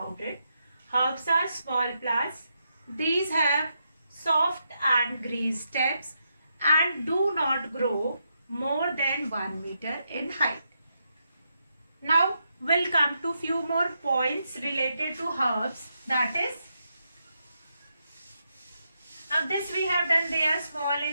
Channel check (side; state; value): both; inverted; correlation -0.82